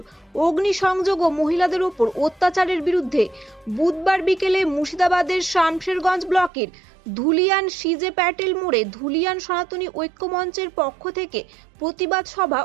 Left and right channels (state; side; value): drops out; left; at 6.5 s